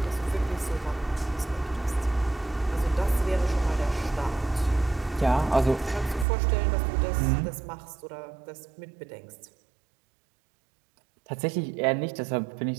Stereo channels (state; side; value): drops out; left; at 6.2 s